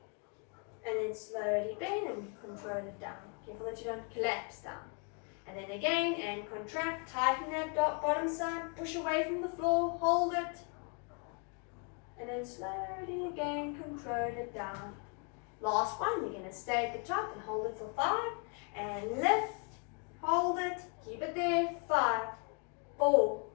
And then slowly bend and control it down. Careful that you don't collapse down. And then again, and contract, tighten that bottom side, push away from the floor, hold it. And then slowly again, control it down. Last one, we're going to stay at the top and hold it for 5. And lift, hold it, keep it there, 5, 4,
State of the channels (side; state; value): right; quieter; 38.9 dB